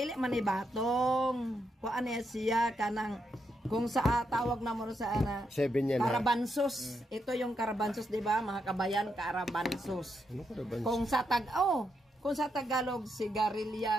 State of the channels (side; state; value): both; normal; correlation 0.81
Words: man ni batong. Kuan niya siya kanang kung sa tawag na mo sa ana. 7 yan. Karabansos. Ito yung karabansos, di ba? Mga kabayan, karabansos. Ano karabansos? Kung sa Tagalog,